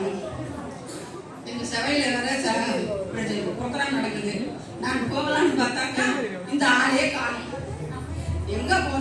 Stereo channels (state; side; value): identical; both; correlation 1.00